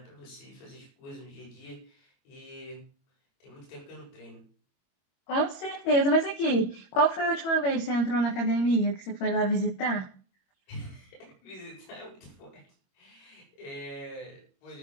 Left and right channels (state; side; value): late; right; 21 ms